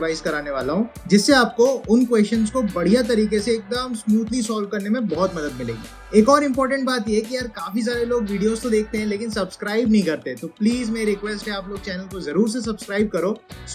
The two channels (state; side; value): identical; both; correlation 1.00